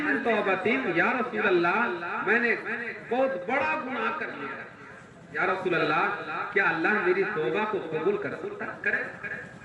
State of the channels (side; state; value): both; identical; correlation 1.00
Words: من توبۃ، یا رسول اللہ میں نے بہت بڑا گناہ کر لیا، یا رسول اللہ کیا اللہ میری توبہ کو قبول کر سکتا کرے؟